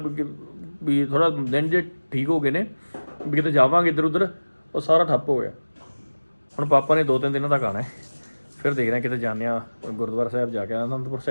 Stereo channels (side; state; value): both; inverted; correlation -1.00